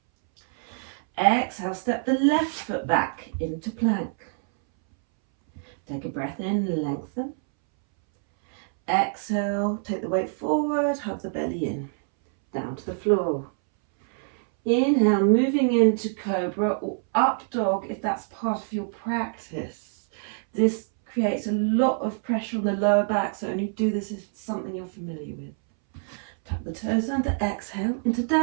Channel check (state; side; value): silent; left; 61 dB below the other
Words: Exhale, step the left foot back into plank. Take a breath in, lengthen. Exhale, take the weight forward, hug the belly in, down to the floor. Inhale, moving into cobra or up dog if that's part of your practice. This creates a lot of pressure on the lower back, so only do this if it's something you're familiar with. Tuck the toes under, exhale, into